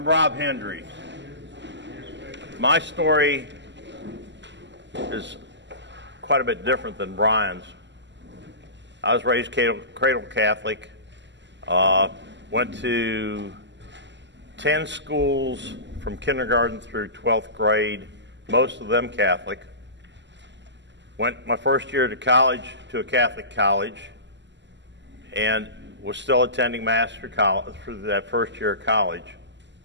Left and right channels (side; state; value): left; late; 0.52 ms